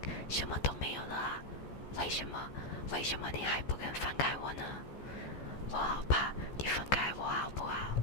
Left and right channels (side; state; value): right; late; 14 ms